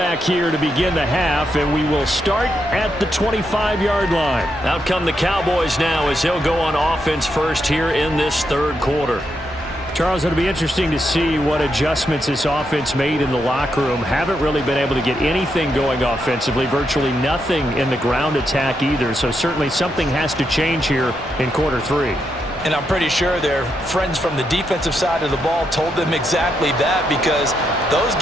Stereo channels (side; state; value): both; normal; correlation 0.82